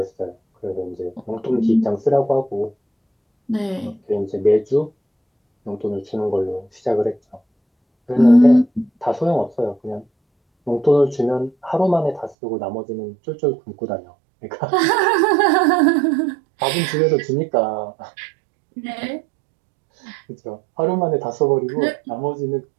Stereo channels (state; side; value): drops out; left; at 12.4 s